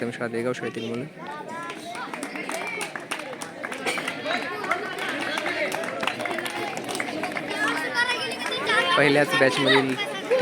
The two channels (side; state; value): both; identical; correlation 1.00